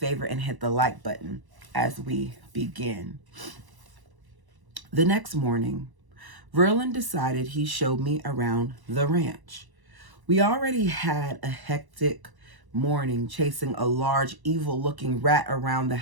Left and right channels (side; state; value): left; late; 1.0 ms